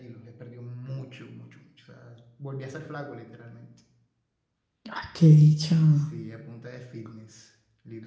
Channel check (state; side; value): identical; both; correlation 1.00